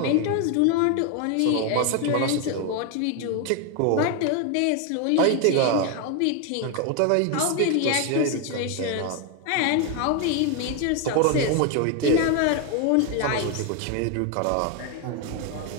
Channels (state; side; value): different; both; correlation 0.01